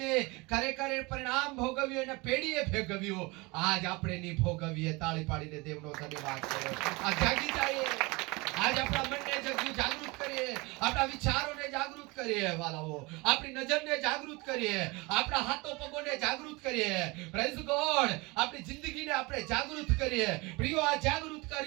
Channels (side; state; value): left; quieter; 25.0 dB